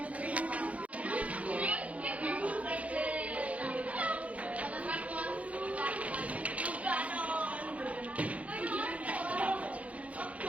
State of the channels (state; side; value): late; left; 0.066 ms